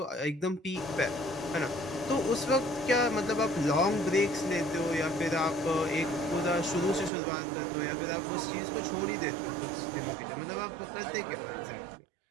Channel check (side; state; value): left; drops out; at 7.1 s